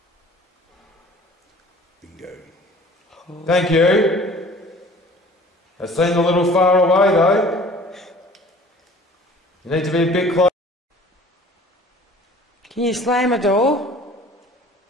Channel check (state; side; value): normal; both; correlation 0.49